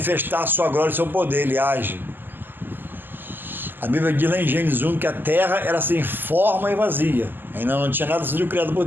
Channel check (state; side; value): late; left; 0.092 ms